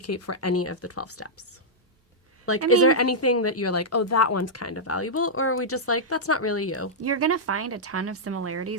for any of the 12 steps? Like, I is there mean- anything that you're like, oh, that one's kind of valuable? Or are we just like, that's not really you? You're going to find a ton of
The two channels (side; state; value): both; normal; correlation -0.08